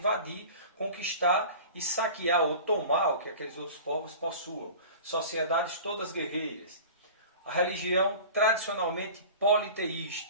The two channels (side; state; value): both; inverted; correlation -0.38